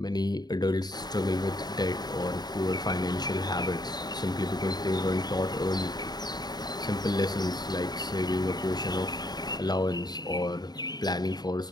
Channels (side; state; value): right; late; 0.20 ms